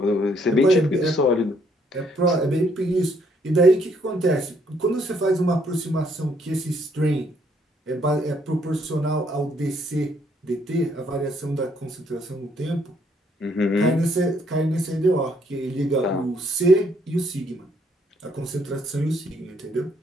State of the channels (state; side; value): normal; both; correlation 0.68